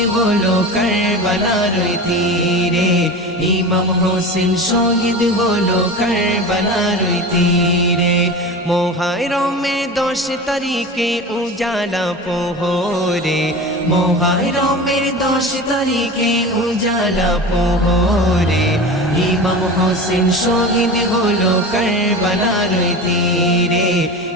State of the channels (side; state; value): both; normal; correlation 0.30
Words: হলো কারবালার তীরে, ইমাম হোসেন শহীদ হলো কারবালার তীরে। মুহররমের 10 তারিখে উজালা পোহরে, মুহররমের 10 তারিখে উজালা পোহরে, ইমাম হোসেন শহীদ হলো কারবালার তীরে,